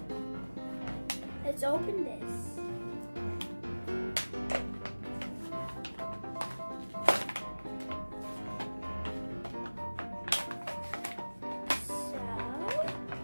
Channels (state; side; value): inverted; both; correlation -1.00